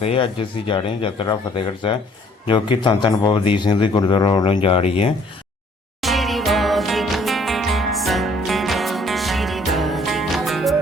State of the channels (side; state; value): both; normal; correlation 0.60